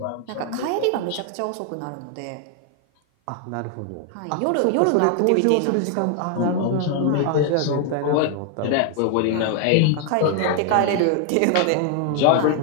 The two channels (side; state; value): both; different; correlation 0.00